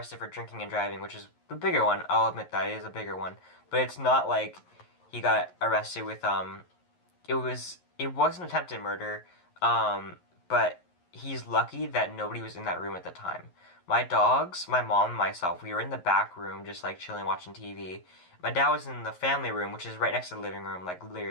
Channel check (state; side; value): late; right; 11 ms